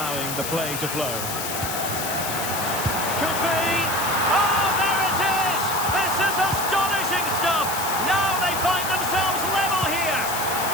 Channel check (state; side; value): noise; left; hiss, 5 dB below the sound